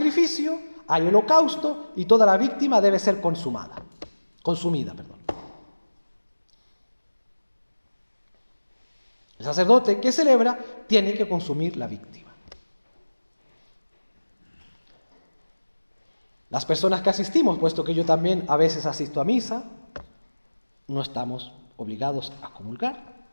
hay holocausto y toda la víctima debe ser consumida. El sacerdote que celebra tiene que consumir la víctima. Las personas que asistimos, puesto que yo también a veces asisto a misa, no estamos obligados a comulgar.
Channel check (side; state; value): both; inverted; correlation -1.00